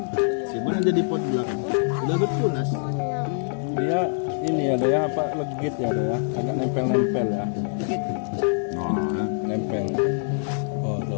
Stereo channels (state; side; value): silent; right; digital silence